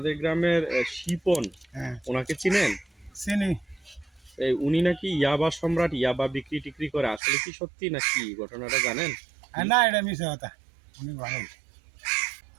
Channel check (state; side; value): drops out; left; at 7.2 s